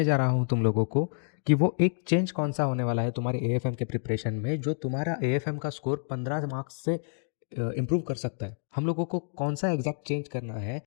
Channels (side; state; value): right; silent; digital silence